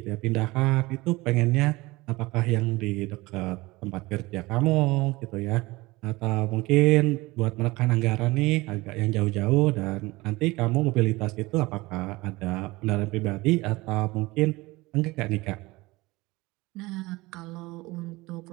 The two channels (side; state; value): left; quieter; 21.3 dB